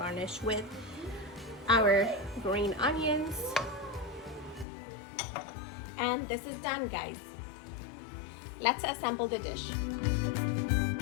with our green onions. And this is done, guys. Let's assemble the dish.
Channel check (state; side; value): drops out; right; at 4.7 s